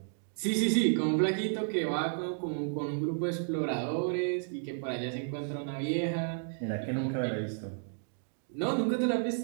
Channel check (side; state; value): left; silent; digital silence